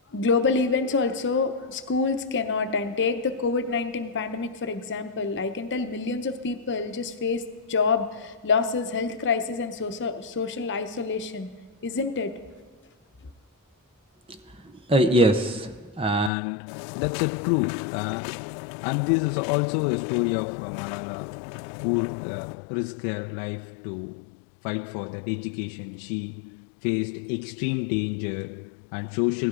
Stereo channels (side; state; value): right; drops out; at 16.3 s